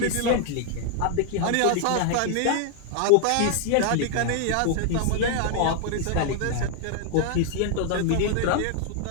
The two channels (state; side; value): different; both; correlation 0.00